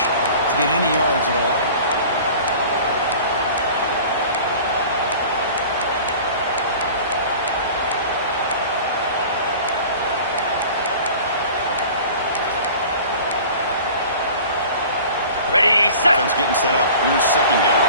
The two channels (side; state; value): both; inverted; correlation -0.42